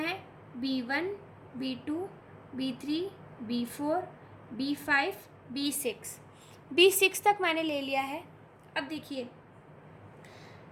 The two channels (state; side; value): identical; both; correlation 1.00